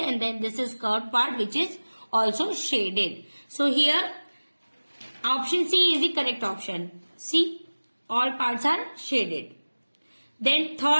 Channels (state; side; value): inverted; both; correlation -1.00